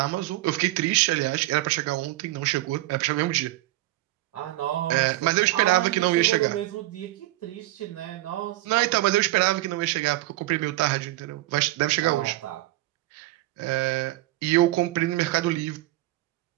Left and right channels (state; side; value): quieter; left; 17.4 dB